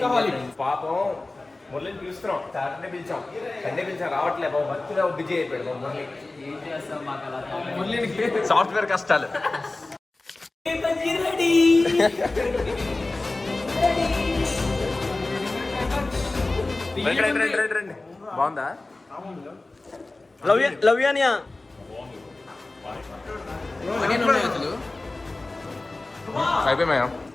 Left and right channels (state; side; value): quieter; right; 3.1 dB